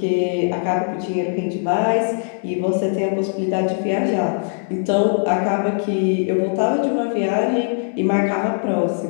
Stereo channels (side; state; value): right; silent; 65 dB below the other